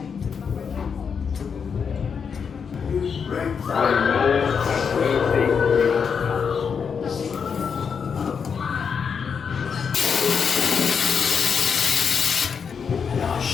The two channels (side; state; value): right; quieter; 6.4 dB